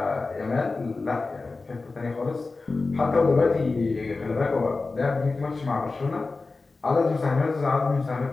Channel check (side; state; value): right; quieter; 3.7 dB